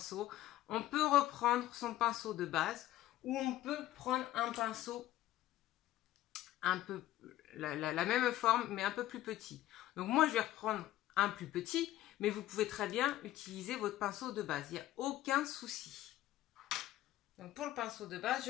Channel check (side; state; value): right; quieter; 14.7 dB